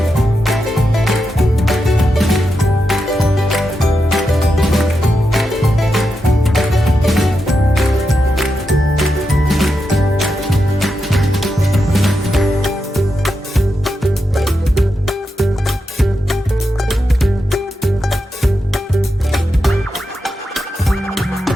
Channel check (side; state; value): both; normal; correlation 0.87